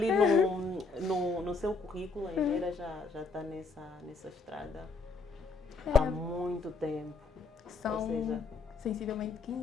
no seu currículo, a engenheira já está nessa estrada há muito tempo. São sensivelmente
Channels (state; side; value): quieter; right; 3.9 dB